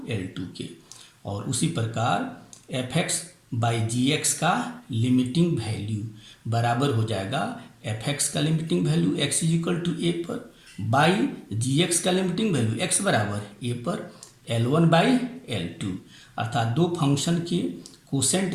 L2 के। और उसी प्रकार F X by G X का लिमिटिंग वैल्यू बराबर हो जाएगा एफ एक्स का limiting value x is equal to A पर बाई जी एक्स का लिमिटिंग वैल्यू x बराबर ए पर L1 बाई L2। अर्थात दो फंक्शन के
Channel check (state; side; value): identical; both; correlation 1.00